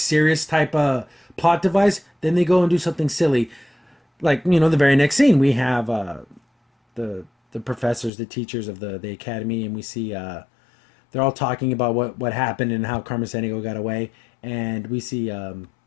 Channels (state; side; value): drops out; right; at 8.1 s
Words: type of plot device. Then they go and do something silly, like the very next scene we have the professors, the teachers of the academy, and we see they're all talking about what happened and how Carmen Sandiego got away, and we see